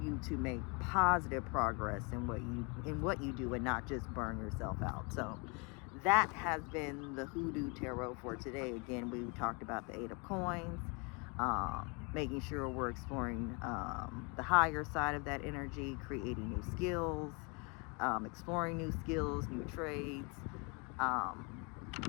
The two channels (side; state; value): right; quieter; 31.8 dB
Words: you to make positive progress in what you do and not just burn yourself out. So that has been the HooDoo Tarot for today. Again, we talked about the Eight of Coins, making sure we're exploring the higher side of that energy, creating new skills, exploring new skills, new trades,